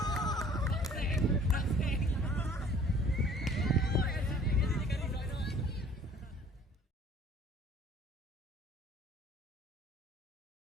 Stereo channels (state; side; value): normal; both; correlation 0.53